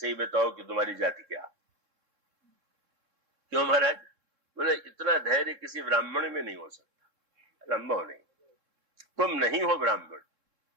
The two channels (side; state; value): left; late; 3.7 ms